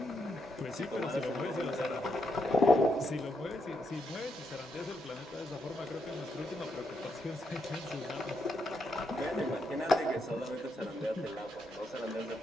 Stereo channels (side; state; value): both; normal; correlation 0.79